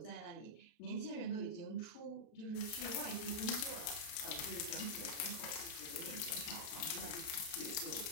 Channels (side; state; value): right; late; 31 ms